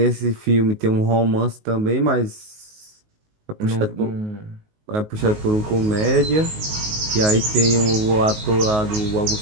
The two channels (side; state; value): left; late; 19 ms